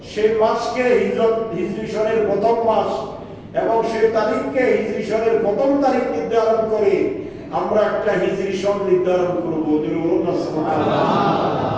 সেই মাসকে হিজরি সনের প্রথম মাস এবং সেই তারিখকে হিজরি সনের প্রথম তারিখ নির্ধারণ করে আমরা একটা হিজরি সন নির্ধারণ করব।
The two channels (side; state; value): both; identical; correlation 1.00